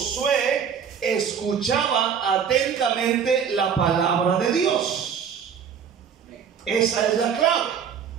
escuchaba atentamente la palabra de Dios. Esa es la clave.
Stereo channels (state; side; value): quieter; left; 7.4 dB